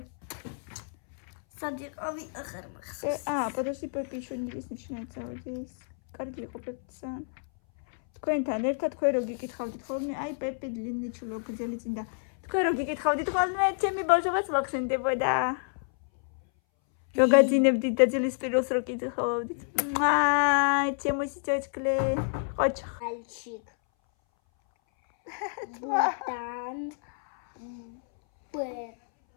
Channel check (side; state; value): right; silent; 59 dB below the other